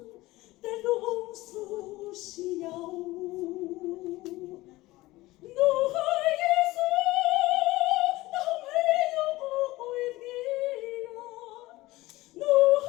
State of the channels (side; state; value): right; quieter; 19.0 dB